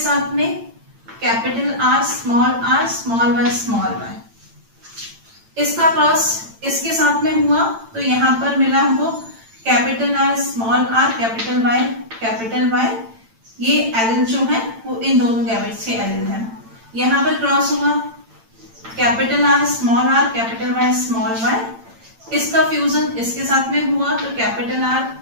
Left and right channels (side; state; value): left; late; 8.9 ms